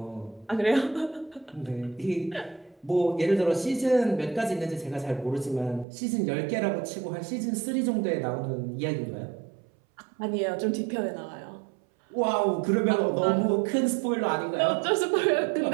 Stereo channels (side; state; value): left; drops out; at 5.9 s